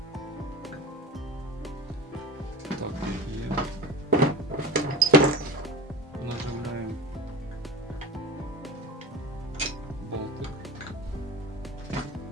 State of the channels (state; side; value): normal; both; correlation 0.30